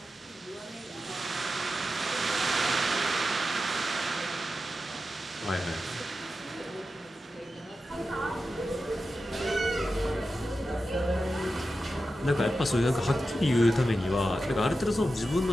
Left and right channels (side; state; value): both; normal; correlation 0.91